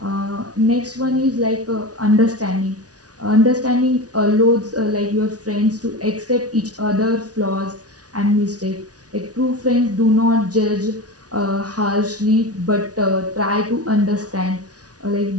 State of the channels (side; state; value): left; late; 0.68 ms